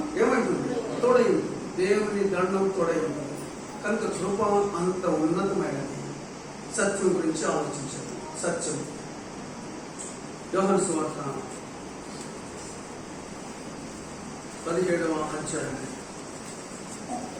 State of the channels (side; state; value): both; identical; correlation 1.00